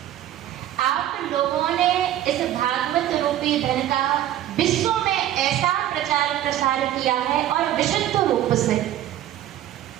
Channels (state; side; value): quieter; left; 12.6 dB